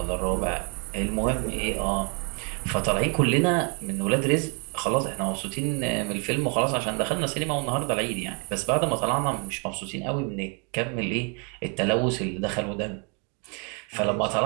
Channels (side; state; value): left; quieter; 35.9 dB